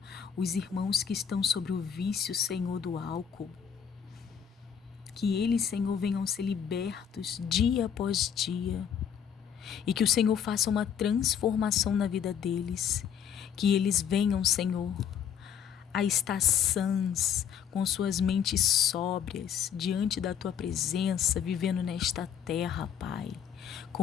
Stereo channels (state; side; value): quieter; right; 8.3 dB